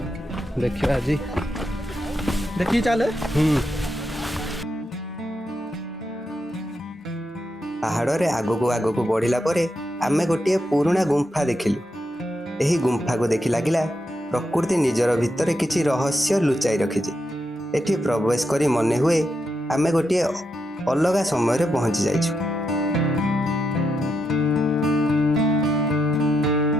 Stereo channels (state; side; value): normal; both; correlation 0.83